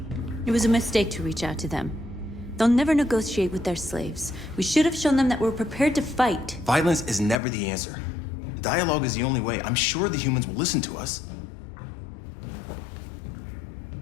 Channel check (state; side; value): drops out; right; at 7.4 s